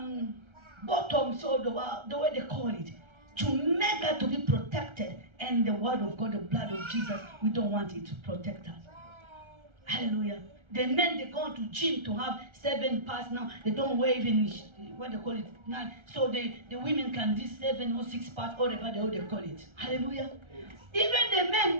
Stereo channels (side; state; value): left; late; 1.3 ms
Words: bottoms, or the way they call it, to make us to be protected. And the word of God, the blood of Jesus, we don't want it to protect us. Hallelujah. The men, they go to gym to have 7 parts now. They don't wear even what they call it 9. So the women can do 7 or 6 parts, whatever they call it. Hallelujah. Even the